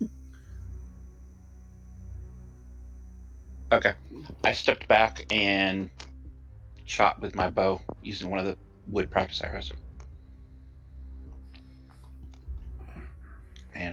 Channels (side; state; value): both; identical; correlation 1.00